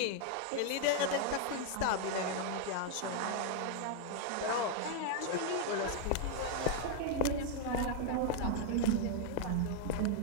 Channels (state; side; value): different; both; correlation 0.00